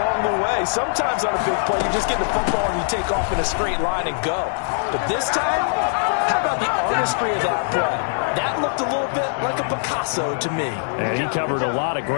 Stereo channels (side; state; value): right; silent; 60 dB below the other